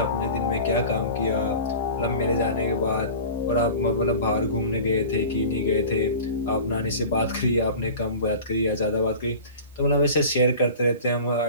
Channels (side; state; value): both; inverted; correlation -0.38